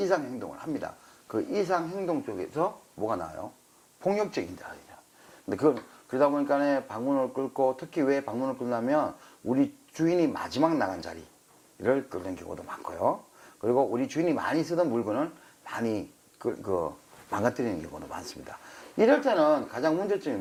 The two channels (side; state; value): both; identical; correlation 1.00